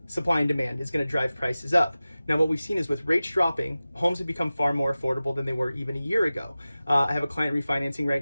supply and demand is going to drive prices up. Now, what we've seen is with rates dropping, homes have become far more affordable than they were even a year ago. I have a client refinancing right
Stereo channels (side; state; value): both; inverted; correlation -0.96